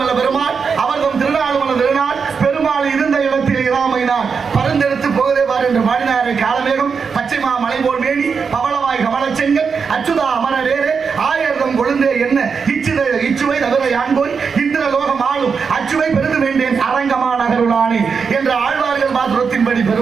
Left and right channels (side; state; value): left; quieter; 5.7 dB